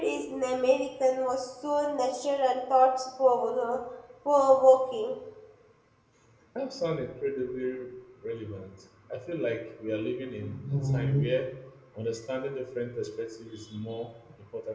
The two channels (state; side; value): identical; both; correlation 1.00